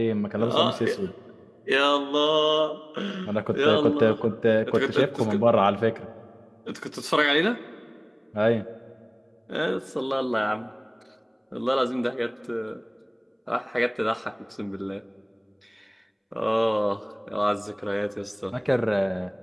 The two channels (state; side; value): identical; both; correlation 1.00